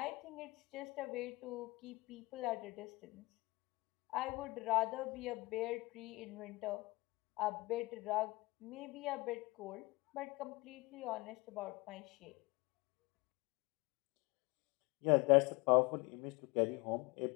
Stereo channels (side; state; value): right; quieter; 23.5 dB